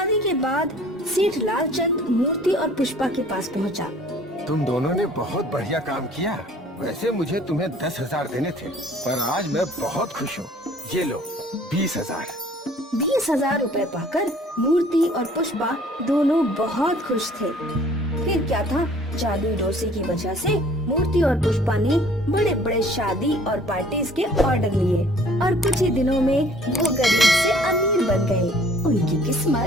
के बाद सेठ लालचंद मूर्ति और पुष्पा के पास पहुंचा। तुम दोनों ने बहुत बढ़िया काम किया। वैसे मुझे तुम्हें 10,000 देने थे, पर आज मैं बहुत खुश हूँ। ये लो 20,000। 20,000 रुपए पाकर मूर्ति और पुष्पा दोनों बहुत खुश थे। फिर क्या था, जादुई डोसे की वजह से मूर्ति और पुष्पा ने बड़े बड़े शादी और पार्टीज के ऑर्डर लिए और कुछ ही दिनों में वो गरीब से अमीर बन गए। उनकी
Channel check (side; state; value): both; normal; correlation 0.54